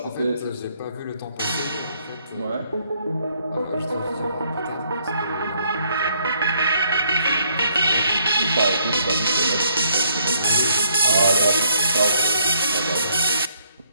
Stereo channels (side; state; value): both; inverted; correlation -0.69